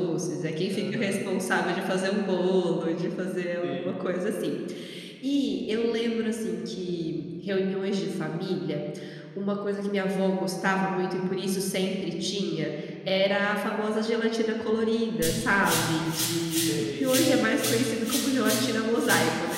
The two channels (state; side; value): identical; both; correlation 1.00